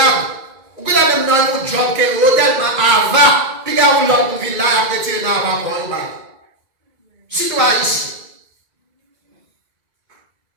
vous pouvez même dans un job qui est tellement avare, puis quand vous l'autre ville là, après tirer dans l'avare pour un si tu es ici.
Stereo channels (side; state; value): left; late; 2.2 ms